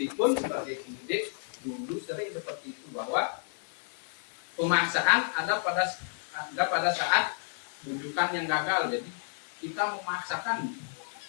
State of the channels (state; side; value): silent; right; 57 dB below the other